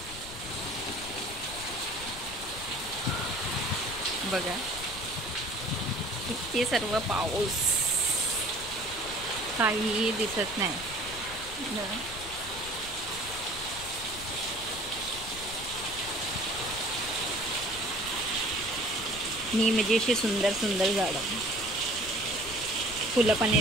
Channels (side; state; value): left; noise; rumble, 14 dB below the sound